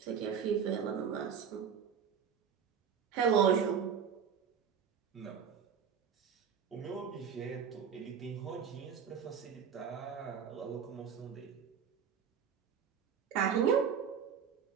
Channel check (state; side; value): quieter; left; 7.5 dB